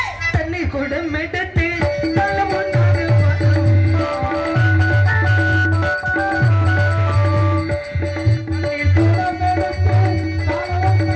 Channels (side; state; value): both; identical; correlation 1.00